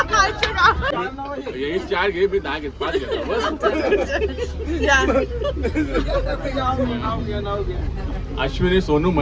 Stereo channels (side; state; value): both; identical; correlation 1.00